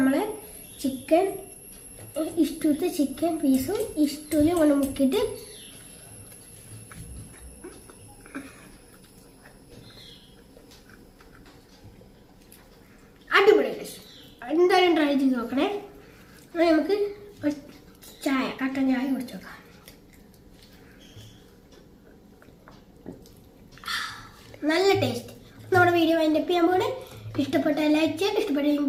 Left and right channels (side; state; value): both; identical; correlation 1.00